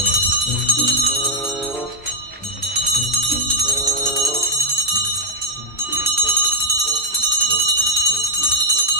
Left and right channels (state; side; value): normal; both; correlation -0.01